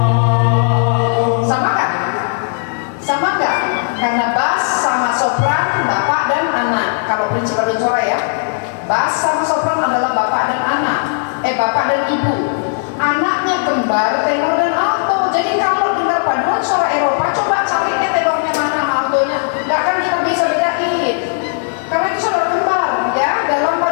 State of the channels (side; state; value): right; silent; 67 dB below the other